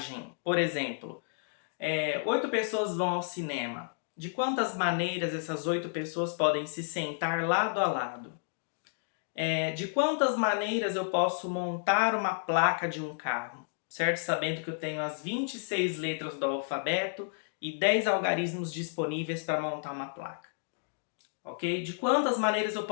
Por exemplo, 8 pessoas vão ao cinema. De quantas maneiras essas 8 pessoas podem se sentar lado a lado? De quantas maneiras eu posso montar uma placa de um carro? Certo? Sabendo que eu tenho as 26 letras do alfabeto e 10 algarismos disponíveis para montar uma placa. Ok? De quantas maneiras eu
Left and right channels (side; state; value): right; silent; digital silence